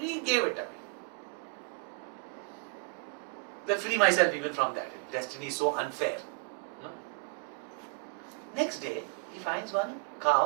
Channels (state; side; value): quieter; left; 35.5 dB